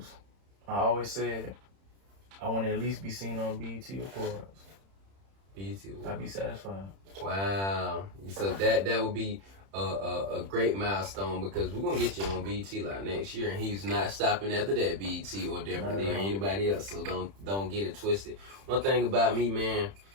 I always said I want to at least be seen on BET Awards. BET Awards. I'd be satisfied. Wow. So that would be a great milestone because we're gonna get you on BET like next year, and he's not stopping after that BET or definitely or anybody else. So don't get it twisted. One thing about me, man,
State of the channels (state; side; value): late; left; 31 ms